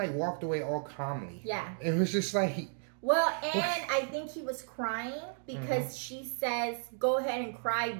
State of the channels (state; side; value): silent; left; 55 dB below the other